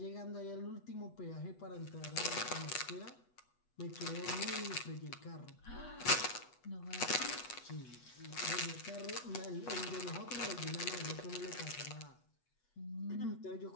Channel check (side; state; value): right; late; 8.2 ms